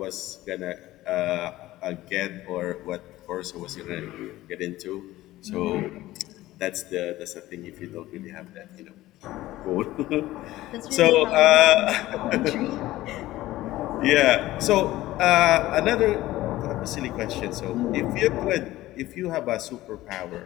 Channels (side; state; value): right; quieter; 16.4 dB